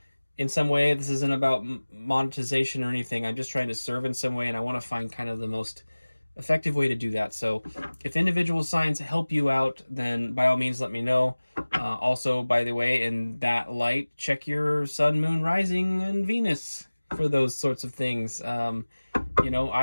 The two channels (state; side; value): inverted; both; correlation -1.00